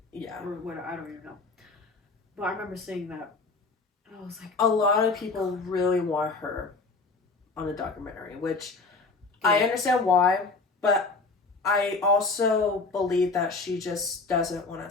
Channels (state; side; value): quieter; right; 3.9 dB